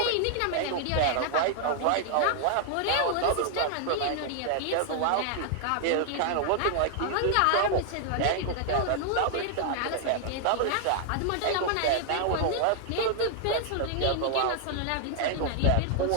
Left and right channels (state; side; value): different; both; correlation 0.00